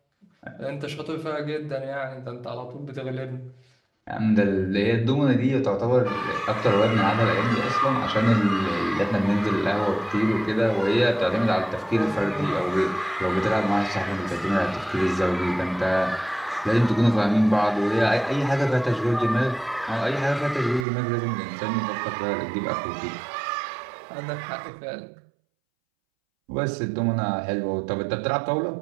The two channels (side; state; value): left; drops out; at 20.9 s